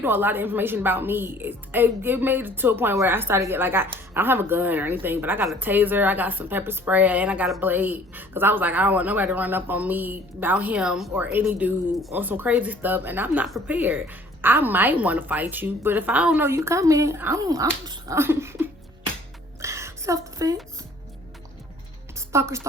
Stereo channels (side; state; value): both; normal; correlation 0.54